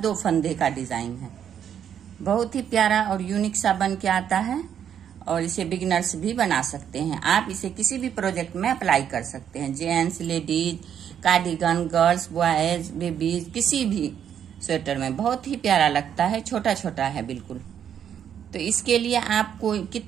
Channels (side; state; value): left; quieter; 9.0 dB